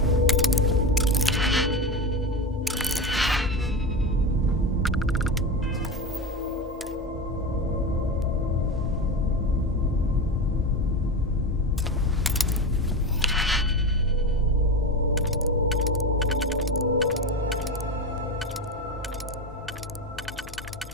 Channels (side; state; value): both; normal; correlation 0.22